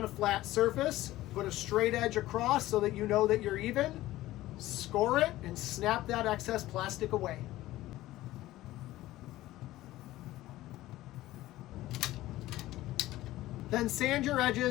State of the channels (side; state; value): right; quieter; 16.2 dB